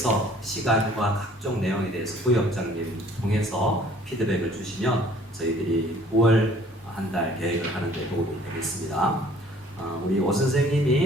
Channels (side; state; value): both; normal; correlation 0.55